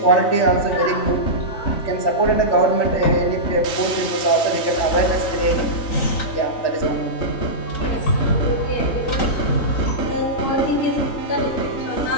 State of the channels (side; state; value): right; late; 3.2 ms